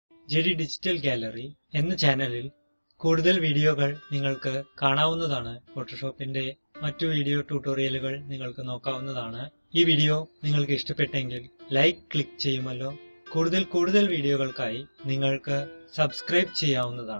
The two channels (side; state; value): both; inverted; correlation -1.00